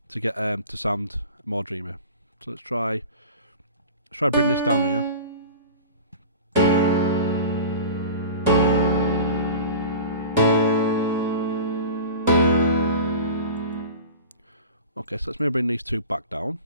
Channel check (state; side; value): inverted; both; correlation -0.37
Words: get to sound more dreamy. So let's try bring this down here. Okay, so let's maybe bring these two back down.